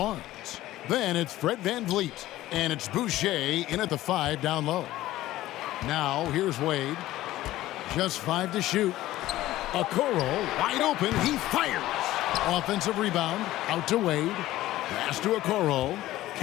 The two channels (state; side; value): quieter; right; 15.5 dB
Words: Then it's Fred VanVleet. And it's Boucher in at the 5 down low. Now here's Wade. Just 5 to shoot. Okoro wide open. He fires. Offensive rebound. Out to Wade. Pass to Okoro.